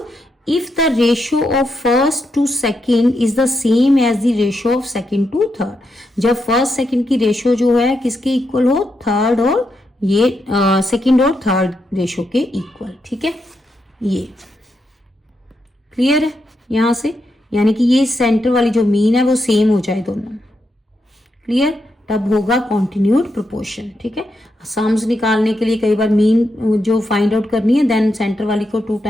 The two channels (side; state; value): both; normal; correlation 0.83